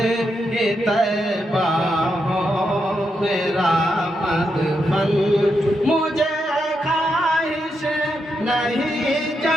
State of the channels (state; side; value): normal; both; correlation 0.83